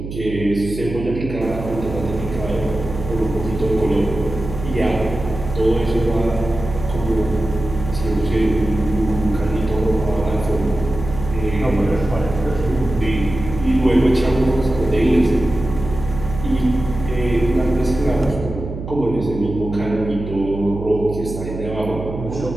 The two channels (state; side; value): noise; right; hum, 8 dB below the sound